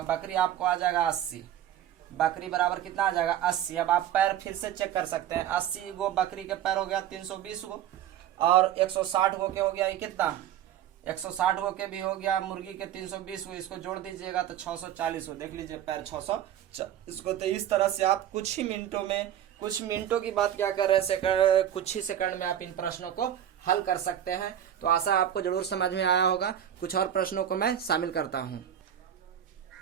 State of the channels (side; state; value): left; quieter; 10.6 dB